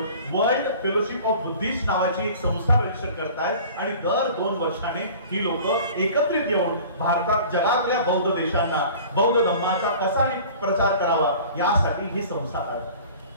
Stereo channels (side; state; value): both; inverted; correlation -0.44